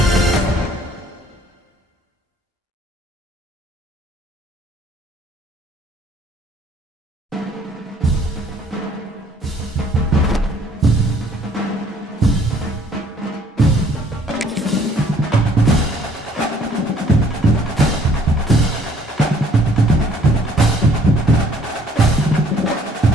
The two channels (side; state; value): both; normal; correlation 0.60